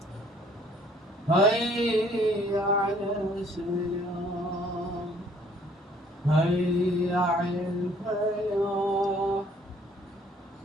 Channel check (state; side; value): normal; both; correlation 0.60